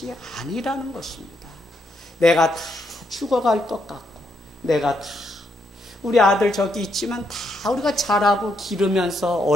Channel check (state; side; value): normal; both; correlation 0.77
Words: 아니라는 것입니다. 내가 다 죽어갈 것 같고, 내가 다 우리 아들 저기 있지만 다 우리가 자라고 기르면서